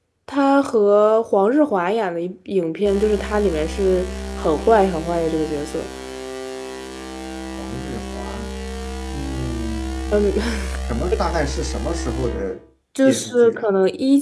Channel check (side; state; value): both; identical; correlation 1.00